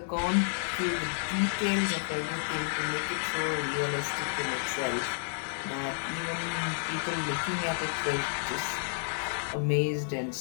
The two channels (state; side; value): silent; right; digital silence